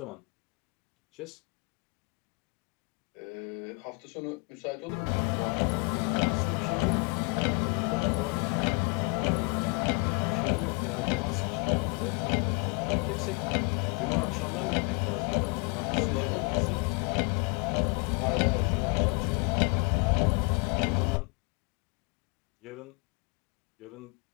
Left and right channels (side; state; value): right; quieter; 31.3 dB